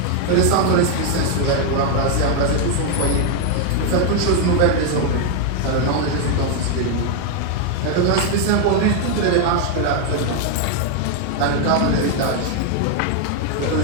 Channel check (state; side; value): different; both; correlation 0.00